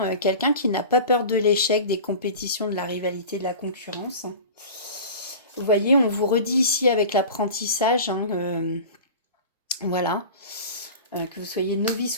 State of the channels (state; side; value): inverted; both; correlation -0.35